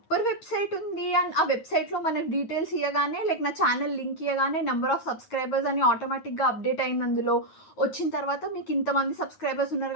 వెబ్సైట్ ఉంది. అండ్ ఆ వెబ్సైట్ లో మనకు డీటెయిల్స్ ఇవ్వగానే, లైక్ నా ఛానల్ లింక్ ఇవ్వగానే నెంబర్ ఆఫ్ సబ్స్క్రైబర్స్ అని ఆటోమేటిక్ గా అప్డేట్ అయింది. అందులో వచ్చిన తర్వాత మీకు ఇంతమంది సబ్స్క్రైబర్స్ ఉన్నారు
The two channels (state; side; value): late; right; 9.5 ms